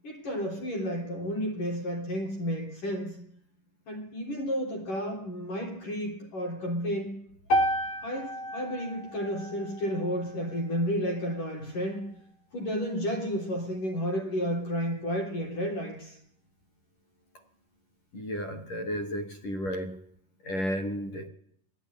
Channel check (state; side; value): late; right; 11 ms